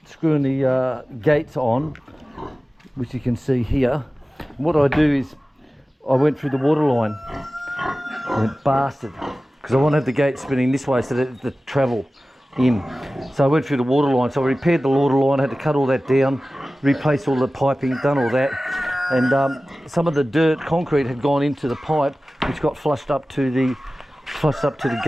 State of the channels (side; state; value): both; normal; correlation 0.96